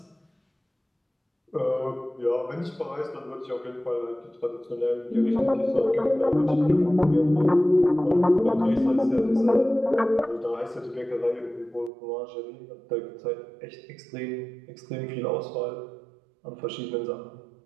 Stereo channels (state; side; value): drops out; left; at 11.9 s